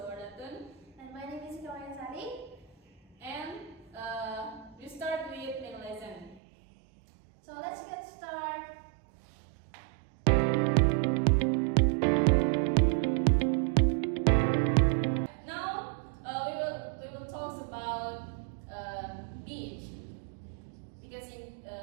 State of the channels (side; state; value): left; drops out; at 6.4 s